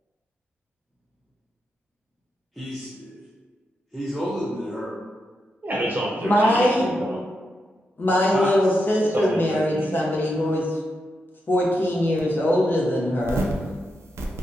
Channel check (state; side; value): normal; both; correlation 0.85